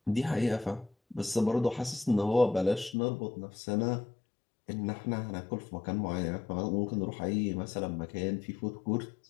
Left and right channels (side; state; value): right; drops out; at 3.0 s